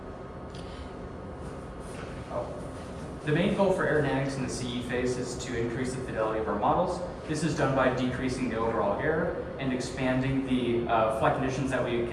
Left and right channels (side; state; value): both; identical; correlation 1.00